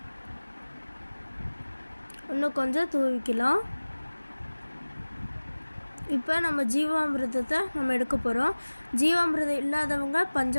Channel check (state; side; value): inverted; both; correlation -1.00